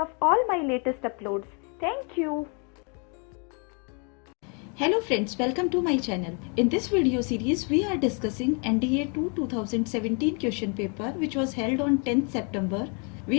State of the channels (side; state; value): right; quieter; 36.5 dB